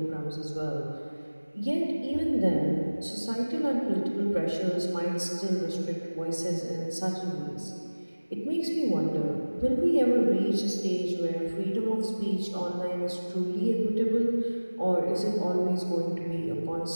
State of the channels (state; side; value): inverted; both; correlation -1.00